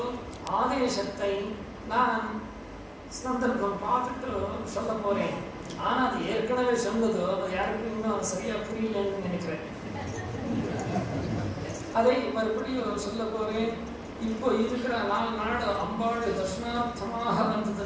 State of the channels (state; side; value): identical; both; correlation 1.00